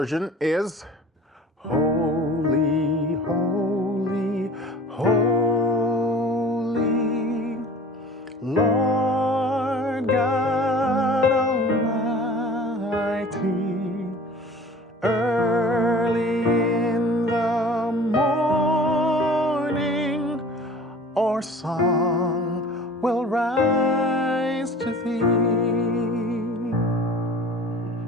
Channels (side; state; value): both; normal; correlation 0.44